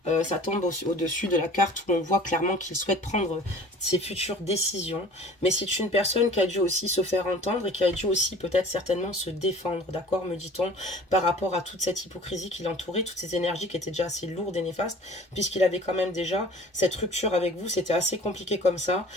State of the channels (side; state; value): both; normal; correlation 0.46